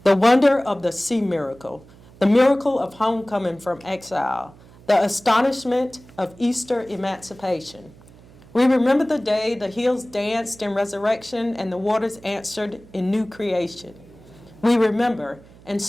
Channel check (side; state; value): right; noise; hum, 24 dB below the sound